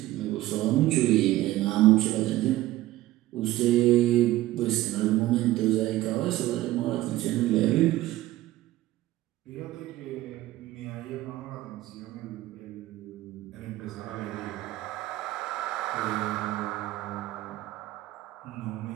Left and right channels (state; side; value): quieter; left; 16.1 dB